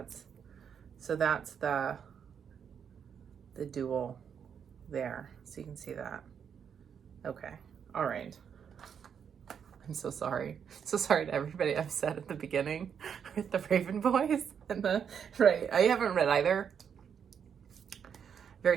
the dual there, so you can see that. Okay, all right. I'm so sorry. So sorry to everybody upset at the beginning with the Raven Boys and right. I haven't read either.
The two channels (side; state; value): left; quieter; 7.5 dB